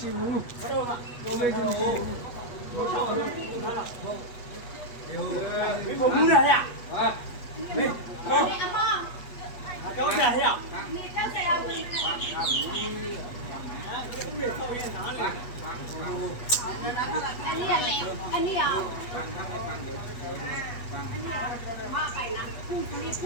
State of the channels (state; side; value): late; right; 8.3 ms